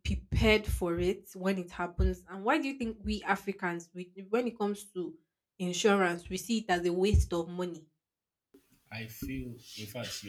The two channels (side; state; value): both; identical; correlation 1.00